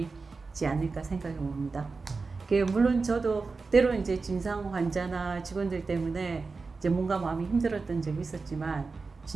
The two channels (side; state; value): left; quieter; 4.2 dB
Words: 않을까 생각해 봅니다. 물론 저도 때로는 이제 진상 환자나 직원들 때문에 이제 뭔가 마음이 힘들었던 적이 있었지만